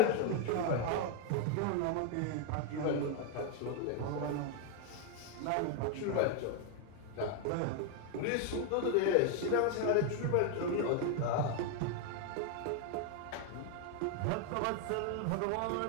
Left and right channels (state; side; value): different; both; correlation 0.01